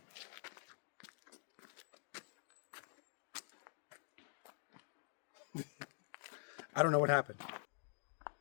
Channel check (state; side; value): silent; right; digital silence